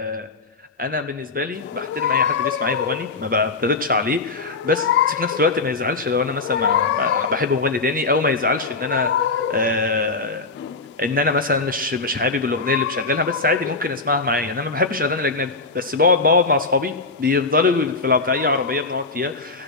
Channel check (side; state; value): right; quieter; 3.9 dB